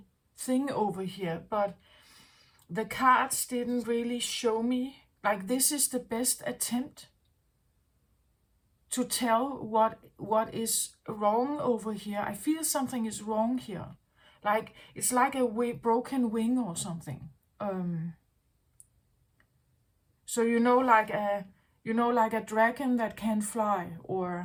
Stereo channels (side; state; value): both; identical; correlation 1.00